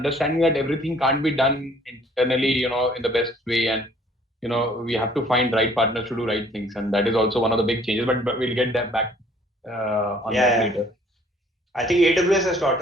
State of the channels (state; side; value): normal; both; correlation 0.58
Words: that everything can't be done internally, in the best way, and we have to find right partners to do right things, and that is also one of the big changes. But we'll get that back on that later. I think AWS has taught